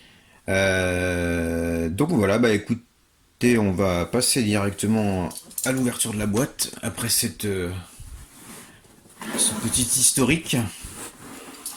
Donc voilà, bah écoutez, on va passer directement à l'ouverture de la boîte après ce petit historique.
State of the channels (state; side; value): identical; both; correlation 1.00